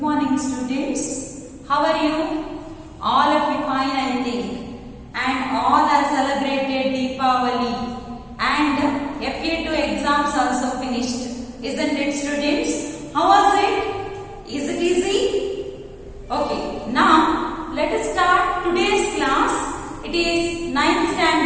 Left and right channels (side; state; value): both; identical; correlation 1.00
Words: students. How are you? All of you fine, I think. And all are celebrated Deepavali. And FA2 exams also finished. Isn't it, students? How was it? Is it easy? Okay. Now, let us start today's class. It is 9th